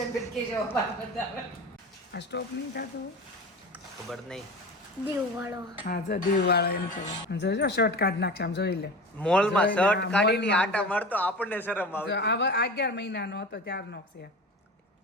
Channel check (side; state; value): both; normal; correlation 0.32